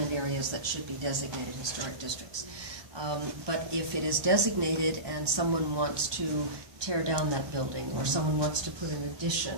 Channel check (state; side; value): late; left; 1.2 ms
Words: areas that should be designated historic districts. But if it is designated and someone wants to tear down that building, or someone wants to put an